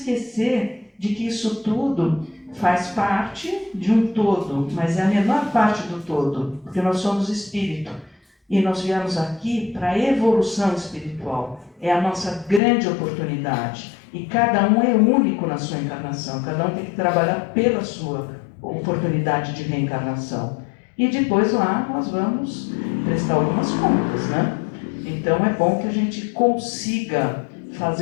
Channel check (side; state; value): right; drops out; at 12.6 s